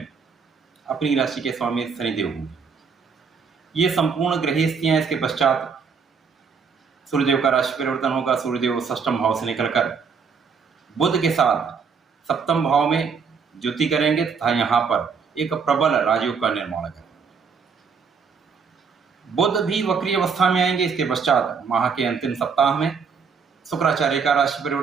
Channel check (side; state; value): left; quieter; 5.8 dB